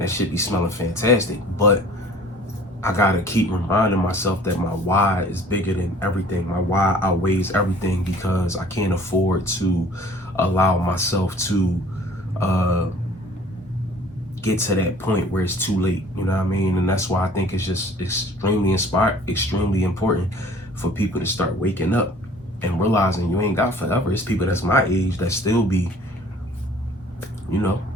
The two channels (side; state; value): both; normal; correlation 0.51